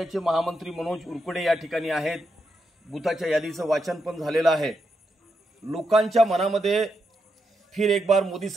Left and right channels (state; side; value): normal; both; correlation 0.83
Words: महामंत्री मनोज उरकुडे या ठिकाणी आहेत। बूथाच्या यादीचं वाचन पण झालेलं आहे। लोकांच्या मनामध्ये फिर एक बार मोदी